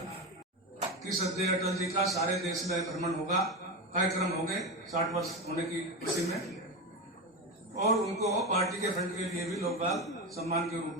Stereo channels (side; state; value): both; normal; correlation 0.18